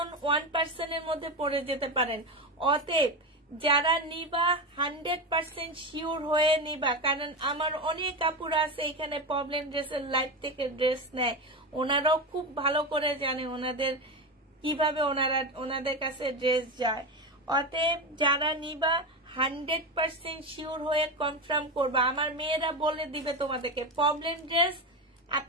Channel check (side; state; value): both; normal; correlation 0.17